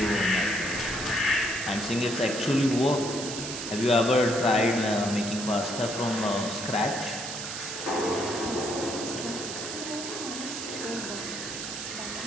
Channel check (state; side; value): noise; right; hiss, 6 dB below the sound